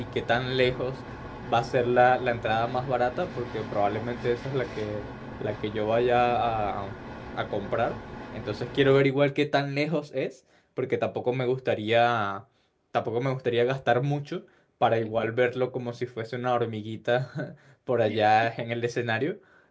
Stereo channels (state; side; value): identical; both; correlation 1.00